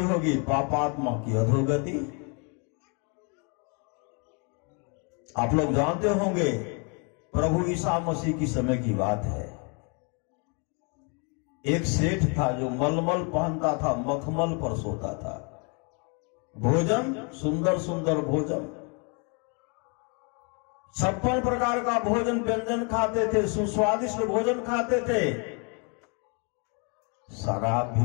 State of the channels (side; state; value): right; quieter; 35.4 dB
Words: होगी, पापात्मा की अधोगति। आप लोग जानते होंगे प्रभु ईसा मसीह की समय की बात है। एक सेठ था जो मलमल पहनता था, मखमल पर सोता था। भोजन सुंदर सुंदर भोजन, 56 प्रकार का भोजन व्यंजन खाते थे, सुस्वादिष्ट भोजन खाते थे, शराब भी